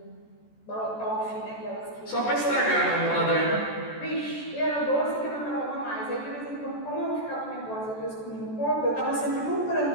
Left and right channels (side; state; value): right; late; 14 ms